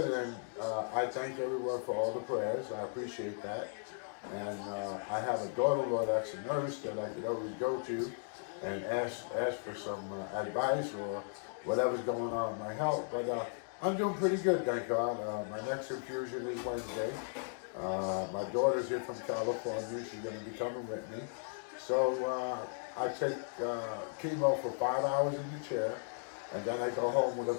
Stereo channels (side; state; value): right; silent; digital silence